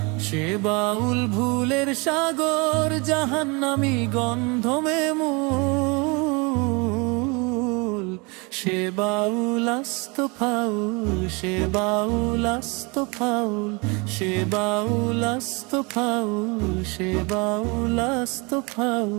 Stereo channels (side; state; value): left; quieter; 29.1 dB